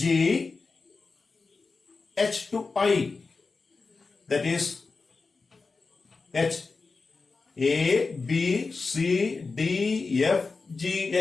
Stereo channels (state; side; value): quieter; right; 4.2 dB